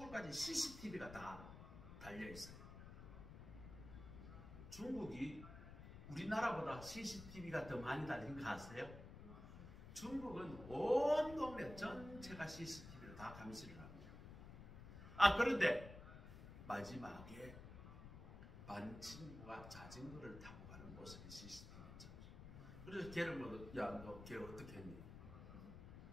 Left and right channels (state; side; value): noise; left; rumble, 12 dB below the sound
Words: CCTV가 다 달려있어요. 중국이 우리나라보다 CCTV가 더 많이 달린 거 아세요? 중국은 온 동네 전체가 CCTV로 다 감시를 합니다. 그런데 마지막에 반 친구가 자전거를 타고 가는 모습이 CCTV였죠. 그래서 걔를 너 걔 어떻게 했니?